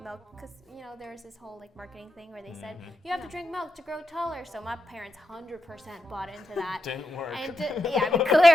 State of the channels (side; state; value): both; normal; correlation 0.86